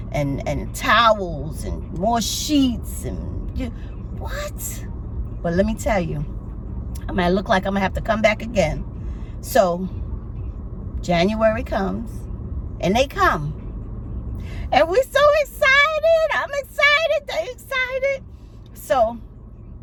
towels and more sheets and what? But let me tell you, I might look like I'm gonna have to come back again. So January comes and they come. And we're so excited. I'm excited. They're excited. So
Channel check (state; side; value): identical; both; correlation 1.00